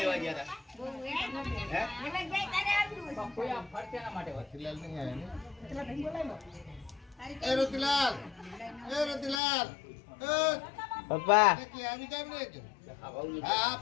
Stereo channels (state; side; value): drops out; right; at 9.4 s